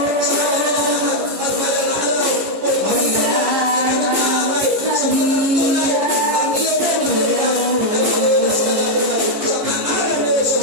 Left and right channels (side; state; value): left; late; 15 ms